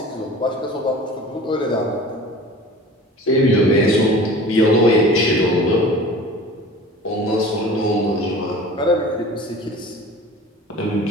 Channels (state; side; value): normal; both; correlation 0.41